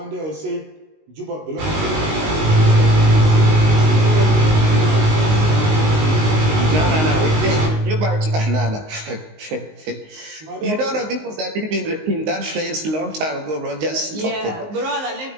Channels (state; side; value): late; left; 19 ms